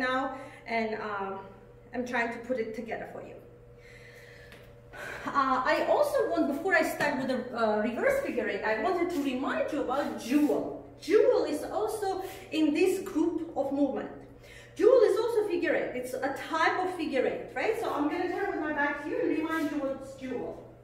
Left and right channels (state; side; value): identical; both; correlation 1.00